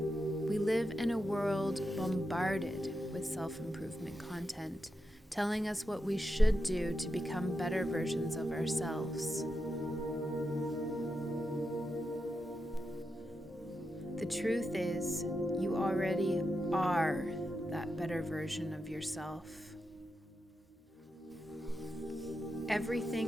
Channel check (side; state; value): both; normal; correlation 0.87